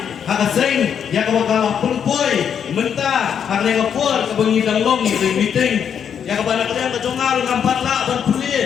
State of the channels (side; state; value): right; quieter; 8.0 dB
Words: haka sing ya ka baka punpoy menta haka ne ka por ka bangi danglong ni meeting ya ka bana ka jongar ngam patla ban